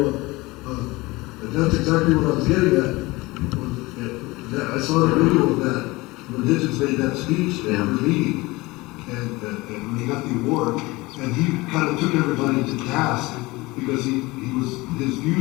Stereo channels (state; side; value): quieter; right; 21.9 dB